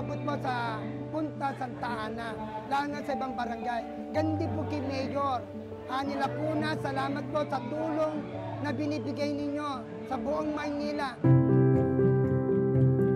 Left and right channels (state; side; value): identical; both; correlation 1.00